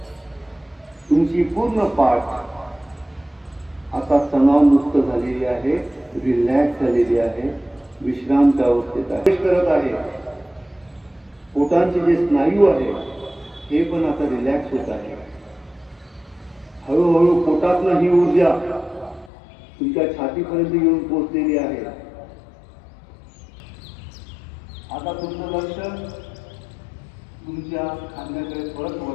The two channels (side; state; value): right; drops out; at 19.3 s